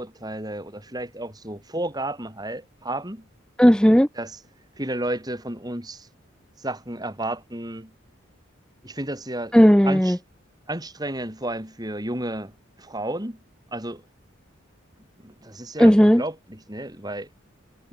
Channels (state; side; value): normal; both; correlation 0.94